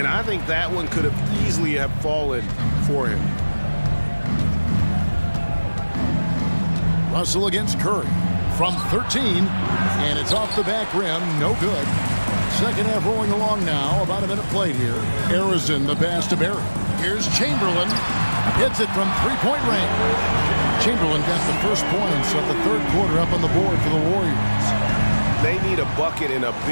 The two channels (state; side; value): inverted; both; correlation -1.00